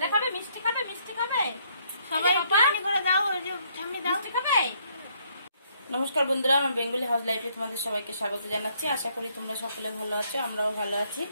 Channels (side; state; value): both; inverted; correlation -0.69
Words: খাবে মিষ্টি খাবে সবাই পানি করে দাও ওই যে সামনে দাও মিষ্টি খাবে। নমস্কার বন্ধুরা, আমার বেঙ্গলি হাউস লাইফে তোমাদের সবাইকে স্বাগত জানাচ্ছি। আশা করি তোমরা সকলে ভালো আছো, আমরাও ভালো আছি।